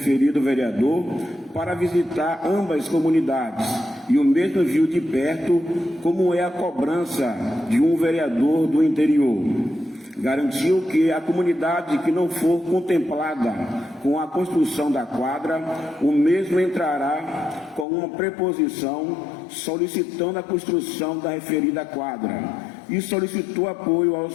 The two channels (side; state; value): right; drops out; at 17.9 s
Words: vereador para visitar ambas comunidades, e o mesmo viu de perto como é a cobrança de um vereador do interior. Garantiu que a comunidade que não for contemplada com a construção da quadra, o mesmo entrará com uma preposição solicitando a construção da referida quadra, e solicitou apoio